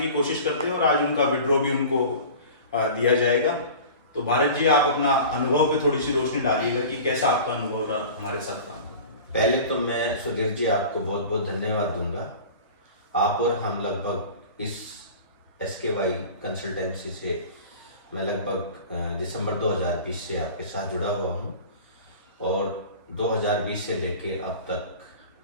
कोशिश करते हैं और आज उनका विड्रॉ भी उनको दिया जाएगा। तो भारत जी, आप अपना अनुभव पे थोड़ी सी रोशनी डालिएगा कि कैसा आपका अनुभव रहा हमारे साथ काम। पहले तो मैं सुधीर जी आपको बहुत बहुत धन्यवाद दूंगा। आप और हम लगभग इस SKY कंसल्टेंसी से मैं लगभग दिसंबर 2020 से आपके साथ जुड़ा हुआ हूँ और 2020 से लेके अब तक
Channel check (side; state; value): both; inverted; correlation -0.38